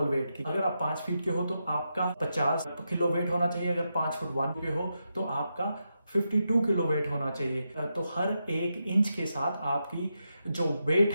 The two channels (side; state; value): both; inverted; correlation -0.86